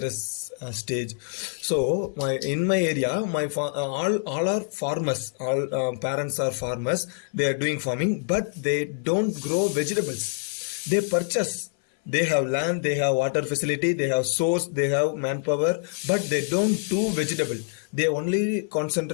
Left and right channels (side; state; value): right; silent; 59 dB below the other